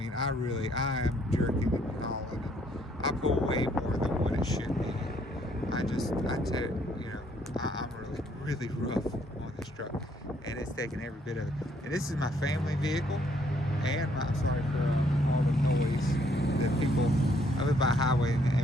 I am jerking and hauling, and I pull way more than what it should be. I'm really rough on this truck, and it's taking every bit of it. And this is my family vehicle, and I'm sorry for all the noise that people. I live by a highway, and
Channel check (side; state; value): both; normal; correlation 0.67